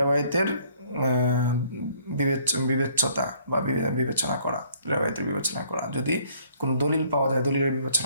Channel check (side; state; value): both; inverted; correlation -0.61